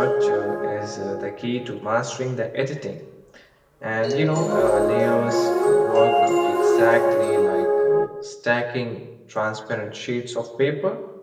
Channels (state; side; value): identical; both; correlation 1.00